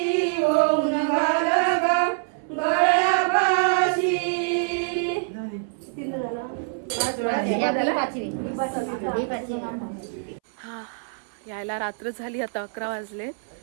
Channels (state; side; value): silent; left; 62 dB below the other